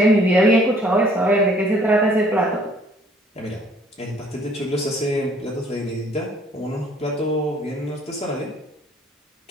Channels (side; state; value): both; normal; correlation 0.59